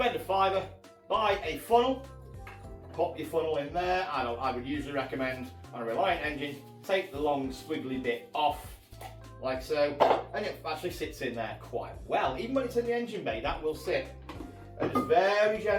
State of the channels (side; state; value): both; identical; correlation 1.00